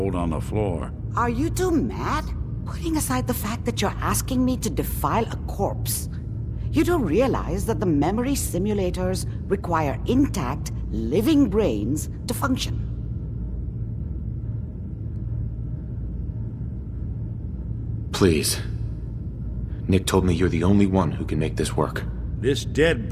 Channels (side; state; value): both; identical; correlation 1.00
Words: on the floor. Are you two mad? Putting aside the fact that you're asking me to defile a corpse, you do realize that the memory simulators require intact, living brains to function. Please. Nick told me you're the only one who can make this work. This dead